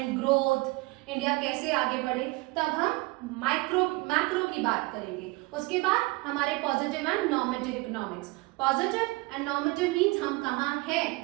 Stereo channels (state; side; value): quieter; left; 23.6 dB